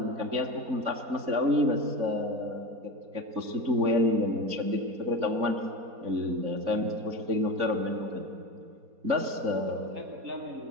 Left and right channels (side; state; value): left; late; 4.2 ms